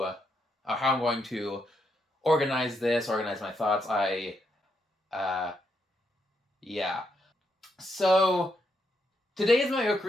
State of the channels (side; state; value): both; normal; correlation 0.79